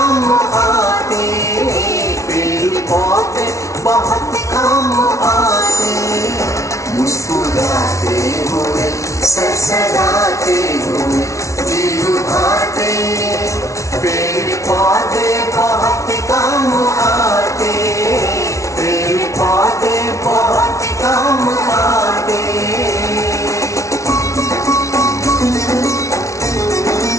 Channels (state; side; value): late; right; 0.14 ms